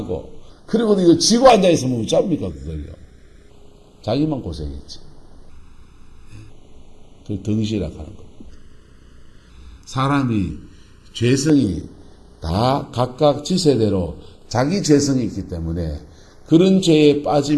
그리고 이거 지고 앉아있으면 어쩝니까, 그걸요? 자기만 고생했지. 그 덩실이라고 하는 겁니다. 사람이 죄성이 다 각각 지세대로 자기 죄성이 있기 때문에 그런 죄에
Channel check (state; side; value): identical; both; correlation 1.00